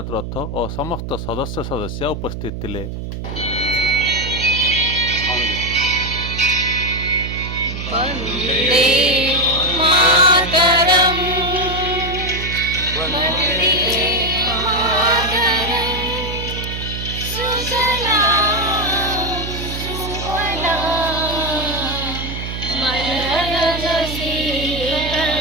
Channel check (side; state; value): right; noise; hum, 7 dB below the sound